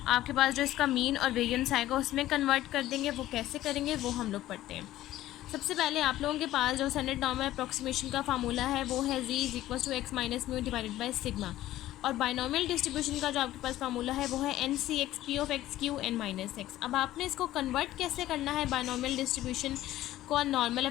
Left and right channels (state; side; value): quieter; right; 14.6 dB